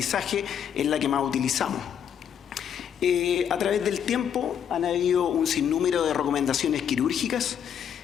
es la que más utilizamos. A través del tiempo han habido un sinnúmero de recomendaciones quirúrgicas.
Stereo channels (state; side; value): quieter; right; 8.6 dB